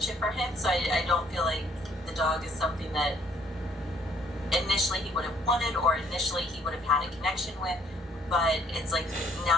for him. So I don't feel like the dog is something that initially he would have wanted or initially he would have had a connection with. But it's like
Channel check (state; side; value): normal; both; correlation 0.63